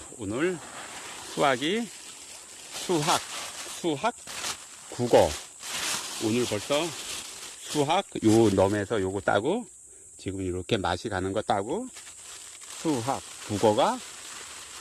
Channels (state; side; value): identical; both; correlation 1.00